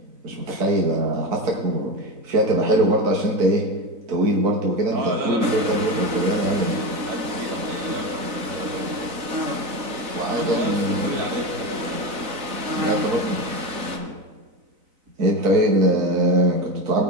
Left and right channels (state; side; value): late; left; 4.0 ms